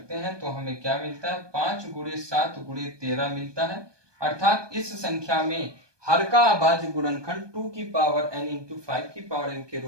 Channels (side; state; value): left; late; 1.2 ms